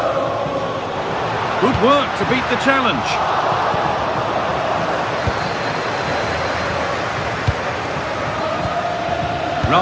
Good work to beat the challenge.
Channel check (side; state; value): both; identical; correlation 1.00